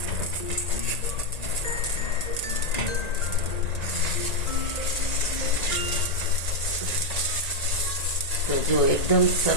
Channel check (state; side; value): late; right; 1.8 ms